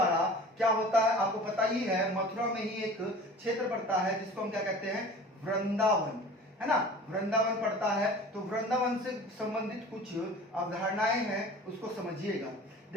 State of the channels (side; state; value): both; normal; correlation 0.42